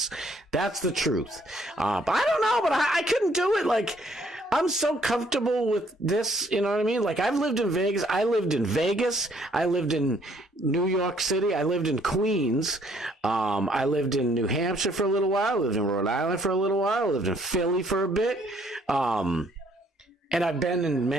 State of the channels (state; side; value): normal; both; correlation 0.65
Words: That's the truth. But I don't know, but I couldn't do it. I'm so comfortable with this, you know what I mean? I've lived in Vegas. I lived in New York City. I lived in Queens. I lived in New Hampshire for a little while. I lived in Rhode Island for a little while. I lived in Philly for a bit. And I've been in